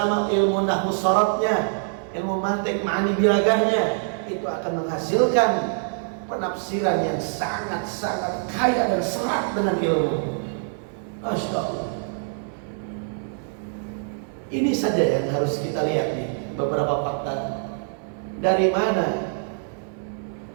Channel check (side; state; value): left; silent; 62 dB below the other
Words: ilmu nahwu syaratnya, ilmu mantik ma'ani bilagahnya, itu akan menghasilkan penafsiran yang sangat-sangat kaya dan serat dengan ilmu. Masya Allah. Ini saja yang harus kita lihat nih, beberapa fakta. Dari mana